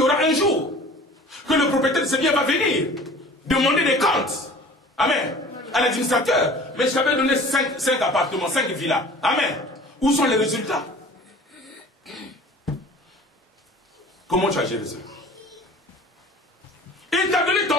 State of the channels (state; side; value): normal; both; correlation 0.45